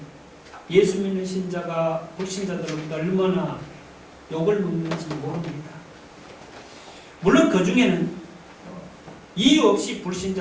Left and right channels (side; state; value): both; identical; correlation 1.00